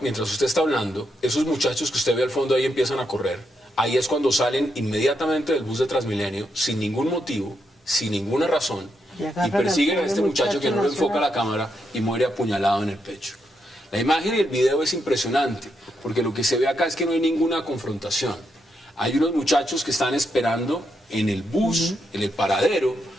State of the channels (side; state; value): both; normal; correlation 0.81